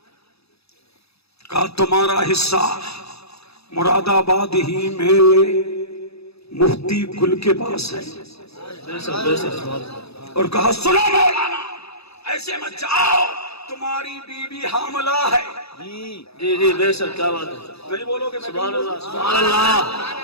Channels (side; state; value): right; late; 0.78 ms